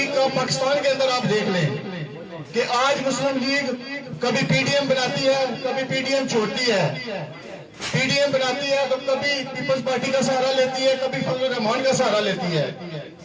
کا پاکستان کے اندر آپ دیکھ لیں کہ آج مسلم لیگ کبھی پی ڈی ایم بناتی ہے، کبھی پی ڈی ایم چھوڑتی ہے، پی ڈی ایم بناتی ہے تو کبھی پیپلز پارٹی کا سہارا لیتی ہے، کبھی فضل الرحمان کا سہارا لیتی ہے۔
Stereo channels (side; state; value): both; identical; correlation 1.00